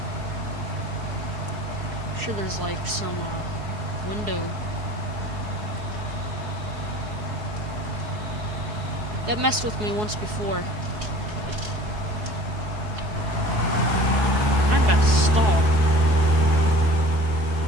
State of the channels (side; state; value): left; late; 4.7 ms